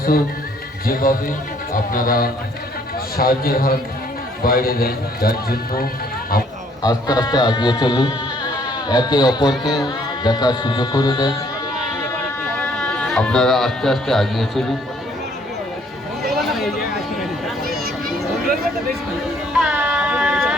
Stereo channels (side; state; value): both; normal; correlation 0.63